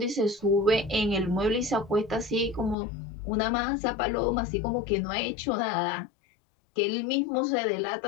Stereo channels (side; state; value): right; drops out; at 2.8 s